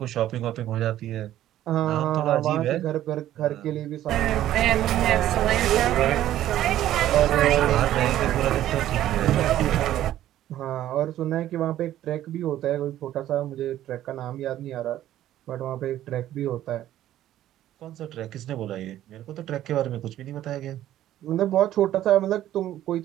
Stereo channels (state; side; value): quieter; left; 12.9 dB